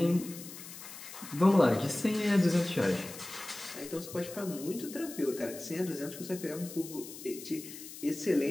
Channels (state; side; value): noise; left; hiss, 13 dB below the sound